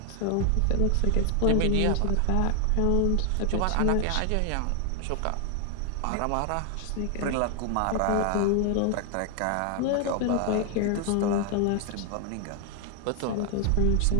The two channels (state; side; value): different; both; correlation 0.00